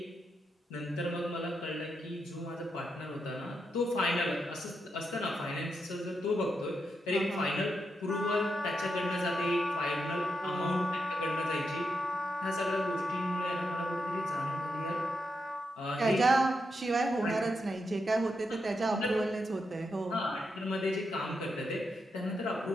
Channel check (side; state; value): both; normal; correlation 0.84